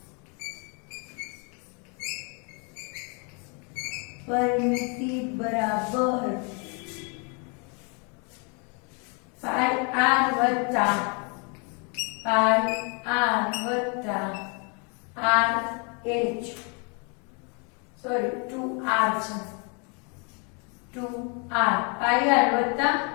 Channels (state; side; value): quieter; right; 35.0 dB